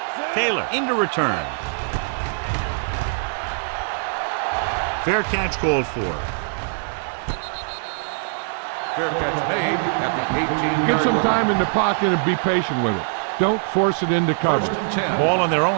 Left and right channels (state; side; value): silent; left; 64 dB below the other